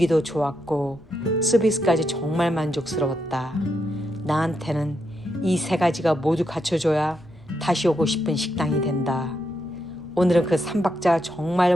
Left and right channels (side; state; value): left; noise; hum, 28 dB below the sound